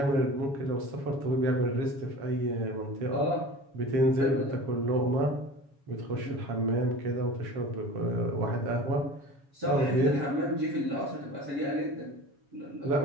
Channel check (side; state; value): left; late; 7.2 ms